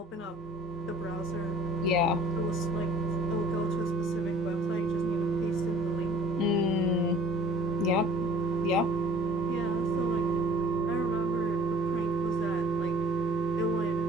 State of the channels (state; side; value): normal; both; correlation 0.50